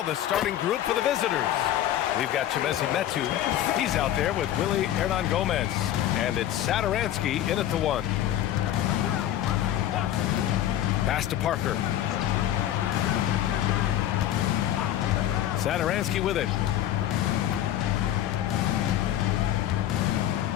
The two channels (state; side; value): quieter; right; 12.2 dB